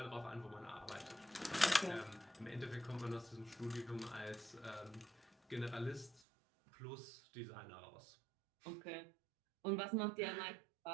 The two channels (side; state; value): left; drops out; at 6.2 s